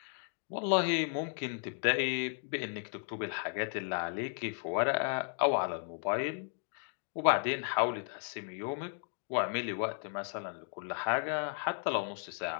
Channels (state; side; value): silent; right; 55 dB below the other